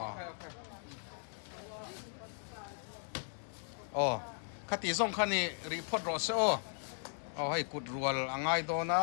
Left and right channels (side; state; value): right; silent; digital silence